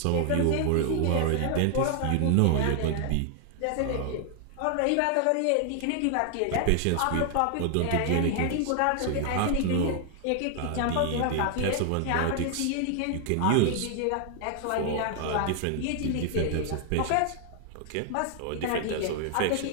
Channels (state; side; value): different; both; correlation 0.00